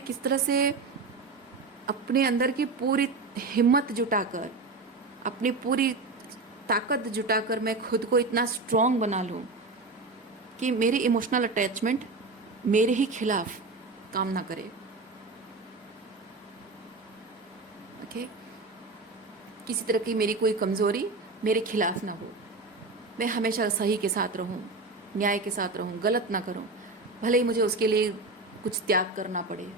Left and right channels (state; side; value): quieter; left; 3.6 dB